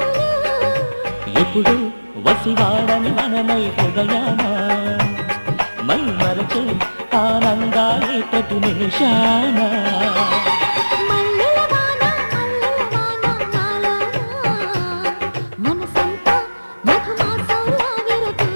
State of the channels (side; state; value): both; inverted; correlation -1.00